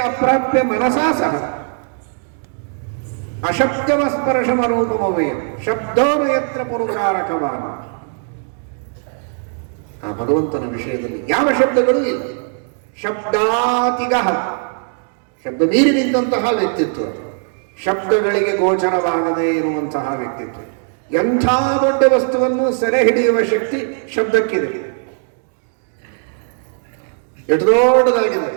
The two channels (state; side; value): silent; left; 56 dB below the other